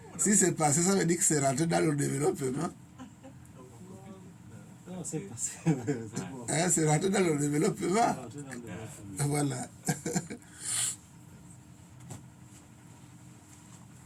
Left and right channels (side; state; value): both; identical; correlation 1.00